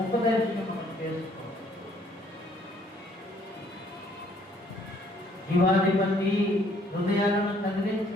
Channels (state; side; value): normal; both; correlation 0.63